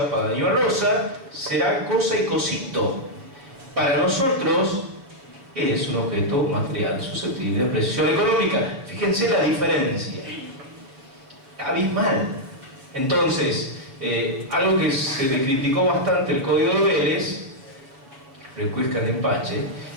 para Daniel Rosa será cosa y cosito. Para nosotros es un objeto material susceptible de apreciación económica. Fíjense la diferencia, abismal. Entonces, algo que se le criticó bastante el Código de Vélez, recuesca de empache,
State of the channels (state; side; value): late; left; 7.2 ms